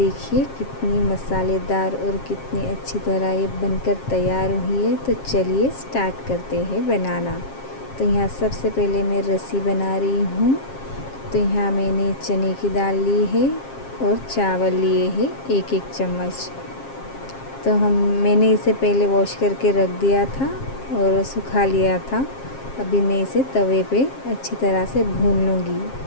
कितनी मसालेदार और कितनी अच्छी तरह ये बनकर तैयार हुई है। तो चलिए स्टार्ट करते हैं बनाना। तो यहाँ सबसे पहले मैं रस्सी बना रही हूँ। तो यहाँ मैंने चने की दाल ली है और चावल लिए हैं 1-1 चम्मच। तो मैंने इसे पहले वॉश करके रख दिया था और सुखा लिया था। अभी मैं इसे तवे पे अच्छी तरह से भून लूँगी।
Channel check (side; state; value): right; late; 7.5 ms